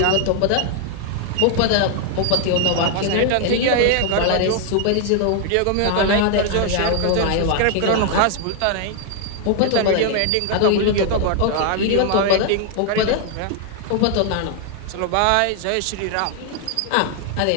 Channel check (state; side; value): different; both; correlation 0.00